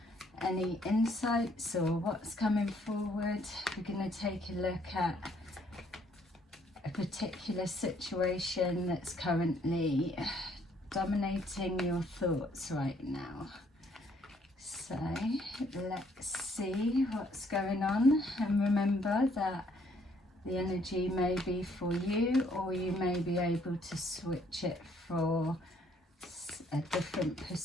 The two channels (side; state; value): both; normal; correlation 0.66